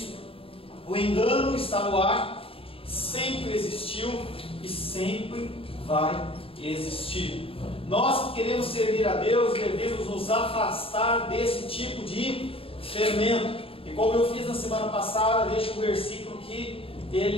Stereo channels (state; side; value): late; right; 0.27 ms